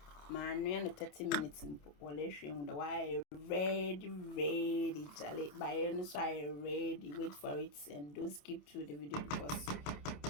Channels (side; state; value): right; late; 27 ms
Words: Man, we are 30 minutes in Polishing the wire ready, Charlie. By any side, ready. Wait for it and don't skip through the video because.